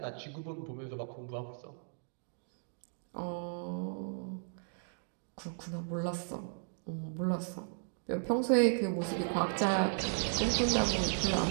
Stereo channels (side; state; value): left; silent; digital silence